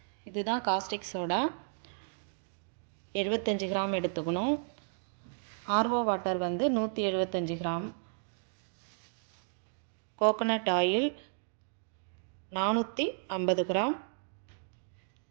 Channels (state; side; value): silent; left; digital silence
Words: இதுதான். காஸ்டிக் சோடா 75 கிராம் எடுத்துக்கணும். ஆர்ஓ வாட்டர் வந்து 175 gram. Coconut oil 450 gram.